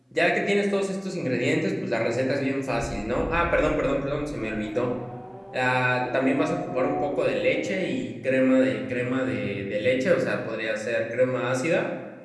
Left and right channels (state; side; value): identical; both; correlation 1.00